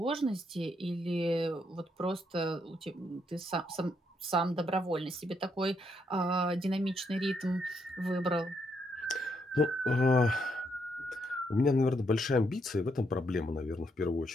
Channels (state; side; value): normal; both; correlation 0.76